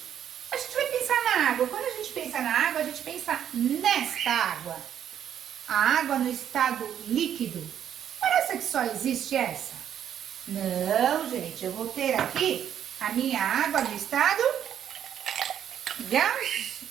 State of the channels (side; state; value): left; quieter; 9.6 dB